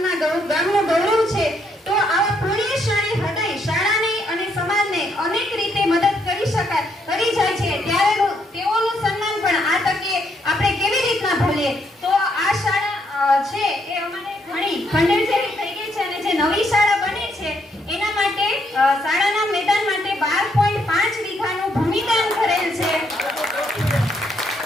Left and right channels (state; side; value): normal; both; correlation 0.74